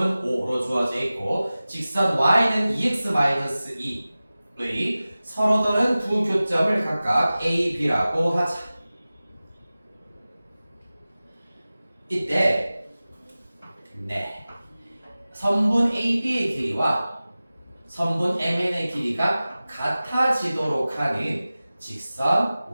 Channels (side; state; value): both; inverted; correlation -0.97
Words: 5로 주어져 있고 직선 y는 2x-2의 서로 다른 두 교점을 각각 A, B라고 하자. 이때 선분 AB의 길이와 선분 MN의 길이가 같아지도록 하는 직선